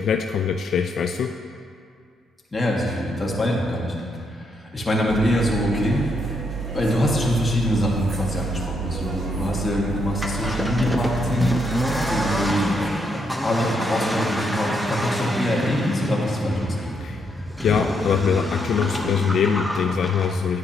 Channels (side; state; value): both; normal; correlation 0.77